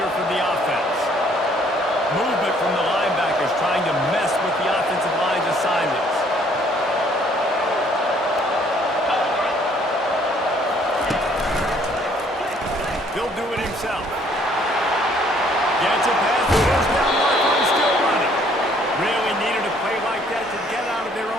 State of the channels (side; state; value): both; normal; correlation 0.62